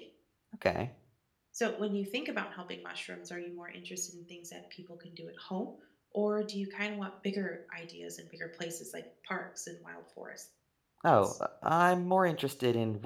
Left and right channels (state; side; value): identical; both; correlation 1.00